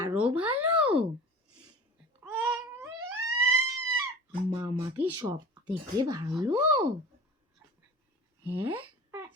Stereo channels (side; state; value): both; normal; correlation 0.37